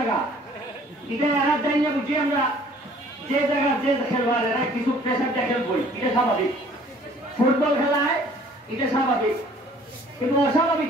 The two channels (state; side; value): normal; both; correlation 0.55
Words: এটা এরা যাই না বুঝি আমরা যে জায়গা যে খেলবার এরা কিছু প্রেশারটা খেলবই, এটা স্বাভাবিক। ফুটবল খেলায় এটা স্বাভাবিক, কিন্তু অস্বাভাবিক